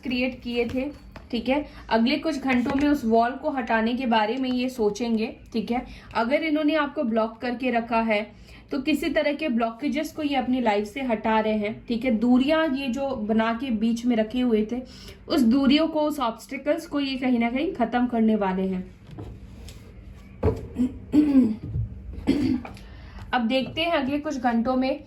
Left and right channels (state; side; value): identical; both; correlation 1.00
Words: क्रिएट किए थे, ठीक है, अगले कुछ घंटों में उस वॉल को हटाने के बारे में ये सोचेंगे, ठीक है। अगर इन्होंने आपको ब्लॉक करके रखा है तो किसी तरह के ब्लॉकेजेस को ये अपनी लाइफ से हटा रहे हैं, ठीक है। दूरियां ये जो बना के बीच में रखे हुए थे, उस दूरियों को, उस ऑब्स्टिकल्स को ये कहीं ना कहीं खत्म करने वाले हैं। अब देखते हैं अगले कुछ घंटों में